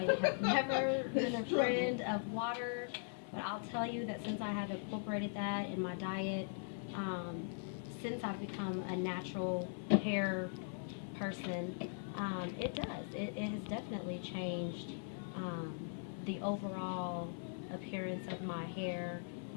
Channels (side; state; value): right; silent; 51 dB below the other